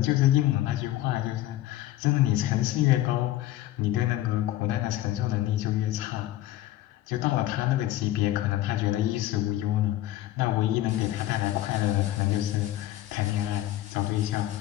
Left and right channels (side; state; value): right; quieter; 14.6 dB